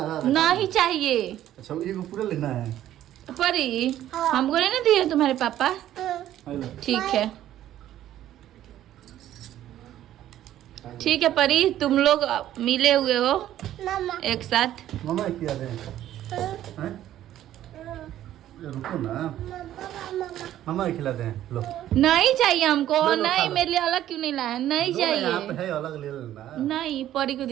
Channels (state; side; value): quieter; left; 12.5 dB